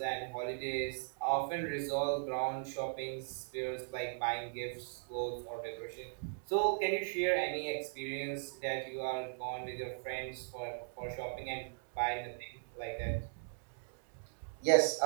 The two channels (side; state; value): left; silent; digital silence